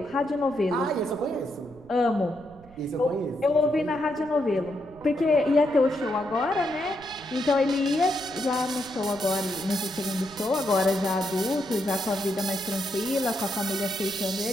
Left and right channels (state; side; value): noise; right; rumble, 23 dB below the sound